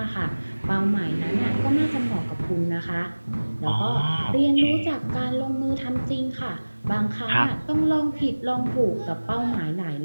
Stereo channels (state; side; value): inverted; both; correlation -1.00